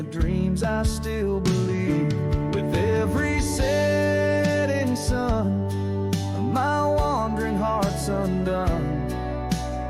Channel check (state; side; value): identical; both; correlation 1.00